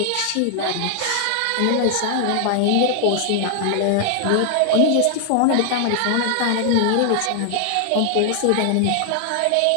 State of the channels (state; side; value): different; both; correlation 0.00